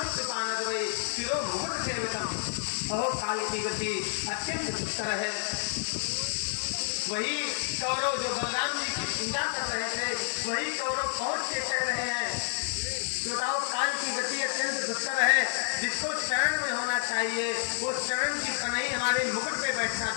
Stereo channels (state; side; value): silent; right; 58 dB below the other